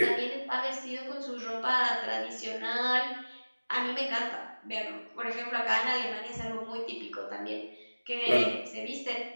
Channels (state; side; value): inverted; both; correlation -1.00